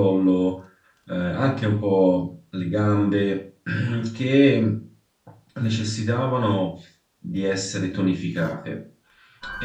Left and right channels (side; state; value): both; identical; correlation 1.00